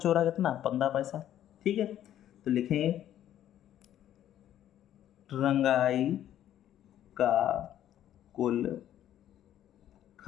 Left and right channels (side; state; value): right; quieter; 11.5 dB